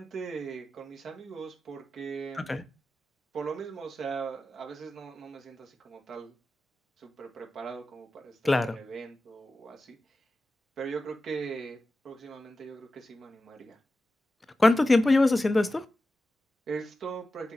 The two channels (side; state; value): both; normal; correlation 0.93